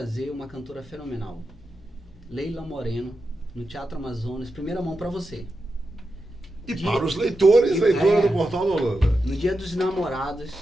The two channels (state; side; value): normal; both; correlation 0.89